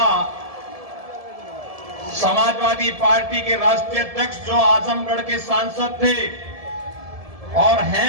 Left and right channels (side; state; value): left; late; 1.7 ms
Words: समाजवादी पार्टी के राष्ट्रीय अध्यक्ष जो आजमगढ़ के सांसद थे और